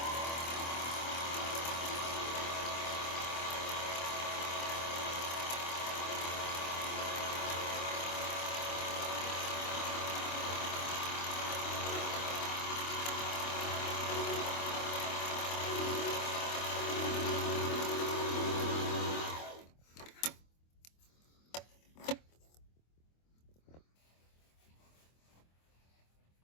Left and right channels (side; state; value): right; late; 25 ms